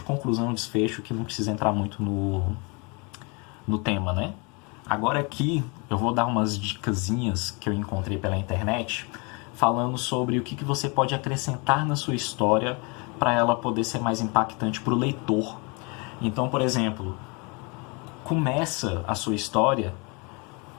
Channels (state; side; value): quieter; right; 30.8 dB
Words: conclusão, desfecho, que não precisa entrar muito no tema, né? Agora aqui eu vou dar umas dicasinhas que eu encontrei pela internet, falando sobre o que você pode acrescentar na sua história para ela poder ser mais impactante para o leitor. Então, por exemplo, começa a sua história